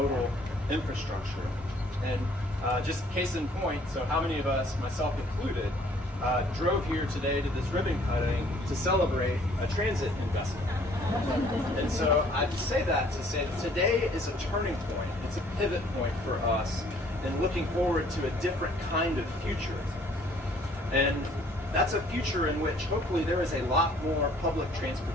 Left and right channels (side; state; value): both; normal; correlation 0.59